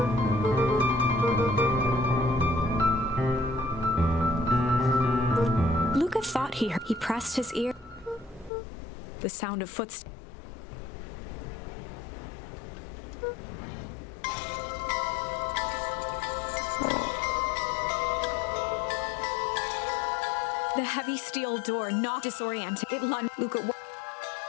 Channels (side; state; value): right; drops out; at 8.5 s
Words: Luca thought he heard. He pressed his ear. The sound of footsteps. The heavy steel door knocked, disoriented. It lunged. Luca.